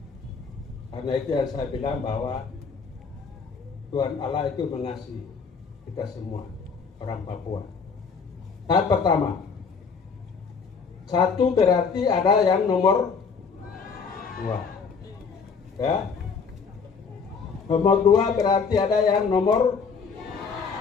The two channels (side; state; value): right; quieter; 5.5 dB